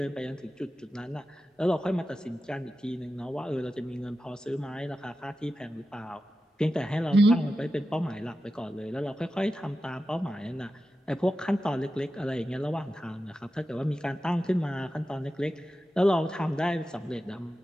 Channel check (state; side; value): normal; both; correlation 0.92